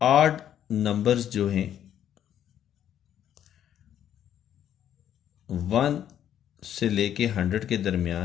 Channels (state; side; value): quieter; right; 10.3 dB